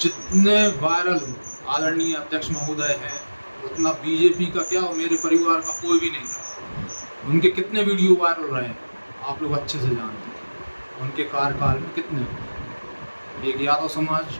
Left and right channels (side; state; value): both; inverted; correlation -1.00